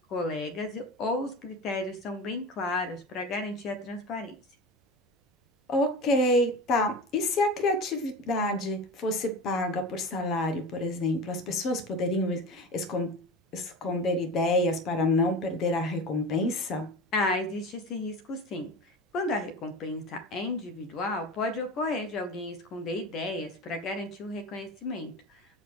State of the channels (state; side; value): normal; both; correlation 0.31